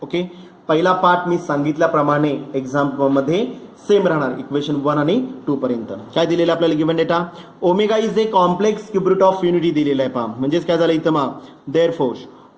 ओके, पहिला पार्ट मी सांगितल्याप्रमाणे एक्झाममध्ये सेम राहणार इक्वेशन 1 आणि 2 पर्यंत. काय दिलेलं आपल्याला given data omega is a complex cube route of unity दिलेला आहे पहा. म्हणजेच काय झालं इथं मग therefore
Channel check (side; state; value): both; identical; correlation 1.00